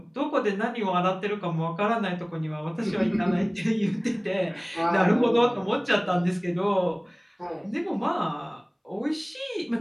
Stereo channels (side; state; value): both; identical; correlation 1.00